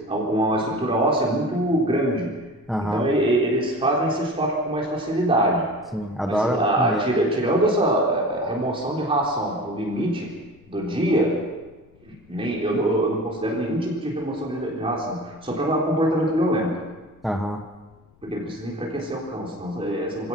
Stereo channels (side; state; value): left; noise; rumble, 29 dB below the sound